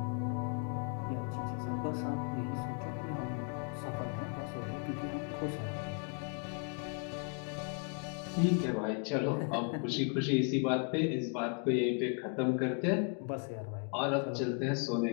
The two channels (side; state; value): right; quieter; 38.7 dB